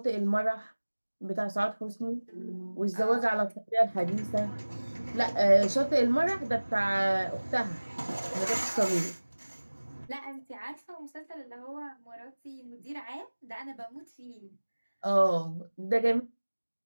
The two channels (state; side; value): inverted; both; correlation -1.00